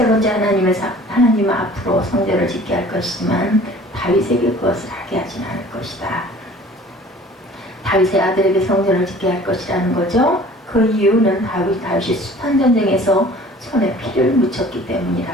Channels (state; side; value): normal; both; correlation 0.48